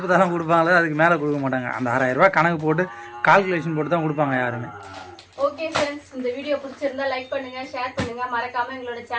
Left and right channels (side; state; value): both; identical; correlation 1.00